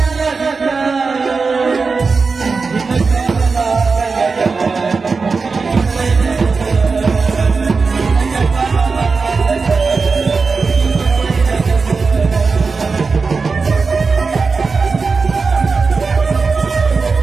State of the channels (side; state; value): left; quieter; 4.6 dB